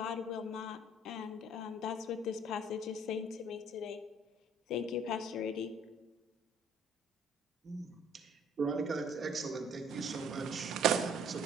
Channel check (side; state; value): both; normal; correlation 0.58